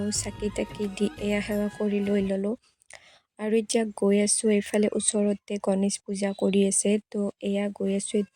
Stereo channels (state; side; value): identical; both; correlation 1.00